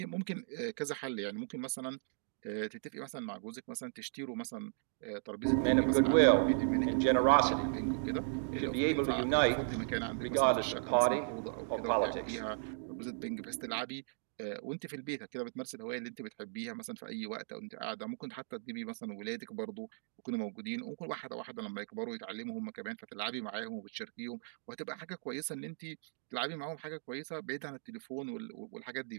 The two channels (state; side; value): silent; left; digital silence